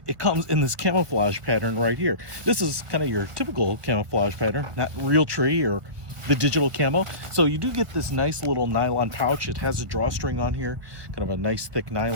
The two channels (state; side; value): late; left; 1.4 ms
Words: it comes in this camouflage pattern right here. This is kind of your typical camouflage pattern, not real tree or the digital camo. So you do get this nice little nylon pouch. It has a drawstring on here, kind of a nice thick